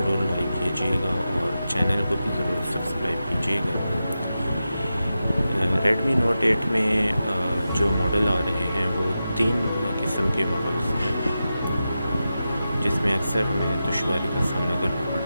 لائک کیجیے گا اور چینل کو بھی ضرور سبسکرائب کیجیے گا۔ ریڈمی نوٹ 8 میں جو ماڈل آ رہے ہیں وہ 3 قسم کے ماڈلز ہیں، جس میں اکثر ہمیں دشواری کا سامنا کرنا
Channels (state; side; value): inverted; both; correlation -0.91